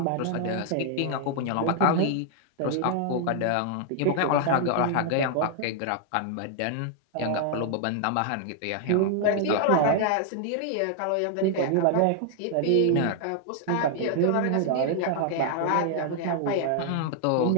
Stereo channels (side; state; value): both; different; correlation 0.00